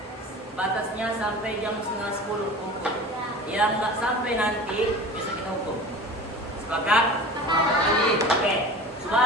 Batasnya sampai jam 9:30 kumpul. Yang nggak sampai nanti besok kita hukum. Sepakat? Muhammad Ali. Oke.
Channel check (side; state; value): both; normal; correlation 0.37